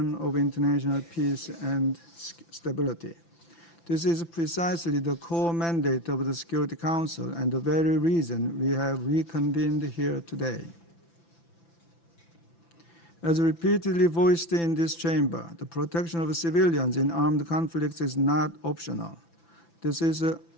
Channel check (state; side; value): late; right; 5.9 ms